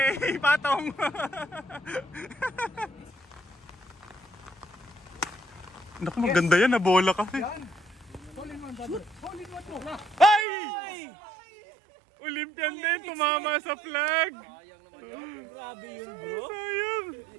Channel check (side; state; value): left; drops out; at 10.5 s